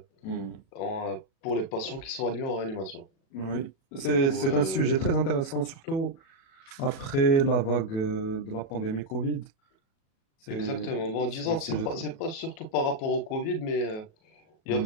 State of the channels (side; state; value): right; late; 37 ms